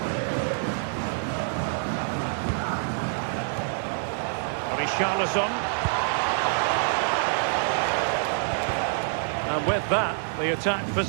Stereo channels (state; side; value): silent; left; 61 dB below the other